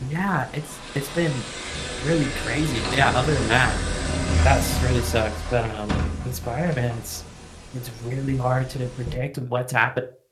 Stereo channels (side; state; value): both; identical; correlation 1.00